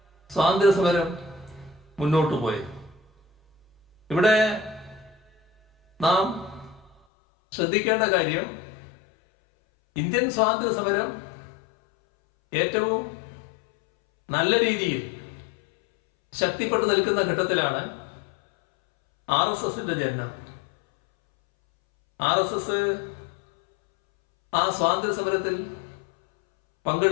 സ്വാതന്ത്ര്യ സമരം മുന്നോട്ട് പോയത്. ഇവിടെ നാം ശ്രദ്ധിക്കേണ്ട കാര്യം, ഇന്ത്യൻ സ്വാതന്ത്ര്യ സമരം ഏറ്റവും നല്ല രീതിയിൽ ശക്തിപ്പെട്ടു നിൽക്കുന്ന ഘട്ടത്തിലാണ് RSSന്റെ ജനനം. RSS ആ സ്വാതന്ത്ര്യ സമരത്തിൽ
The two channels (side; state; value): right; drops out; at 7.0 s